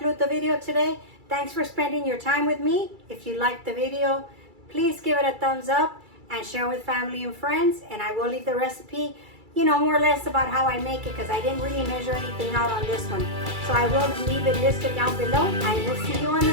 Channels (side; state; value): left; late; 2.3 ms